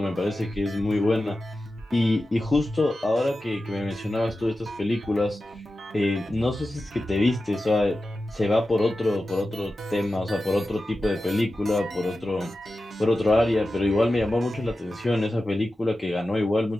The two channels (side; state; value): both; normal; correlation 0.93